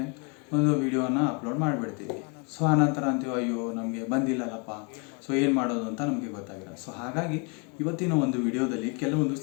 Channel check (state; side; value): quieter; right; 34.4 dB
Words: ಒಂದು ವಿಡಿಯೋನ ಅಪ್ಲೋಡ್ ಮಾಡಿಬಿಡ್ತೀವಿ. ಆನಂತರ ಅಂತೀವಿ, ಅಯ್ಯೋ ನಮಗೆ ಬಂದಿಲ್ಲಲ್ಲಪ್ಪ, ಏನು ಮಾಡೋದು ಅಂತ ನಮಗೆ ಗೊತ್ತಾಗಿಲ್ಲ. ಹಾಗಾಗಿ ಇವತ್ತಿನ ಒಂದು ವಿಡಿಯೋದಲ್ಲಿ ಕೆಲವೊಂದು